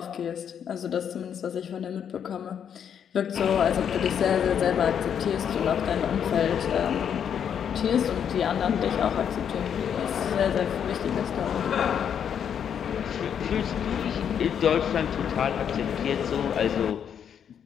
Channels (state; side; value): quieter; right; 8.3 dB